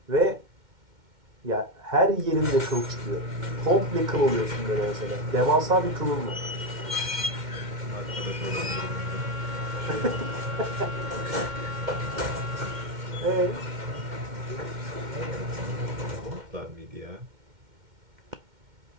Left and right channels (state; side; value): late; left; 2.1 ms